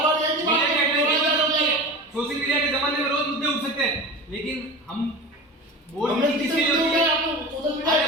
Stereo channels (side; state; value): both; normal; correlation 0.31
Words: सोशल मीडिया के जमाने में रोज मुद्दे उठ सकते हैं, लेकिन हम बोर्ड मीटिंग किसके लिए होती है? अरे